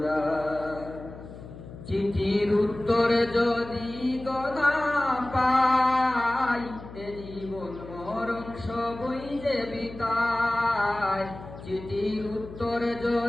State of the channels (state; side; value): noise; left; hum, 15 dB below the sound